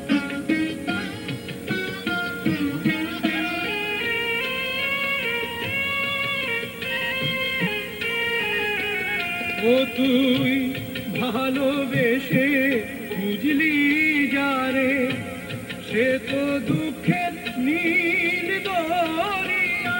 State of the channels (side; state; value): both; identical; correlation 1.00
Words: ও তুই ভালোবেসে বুঝলি যারে, সে তো দুঃখের নীল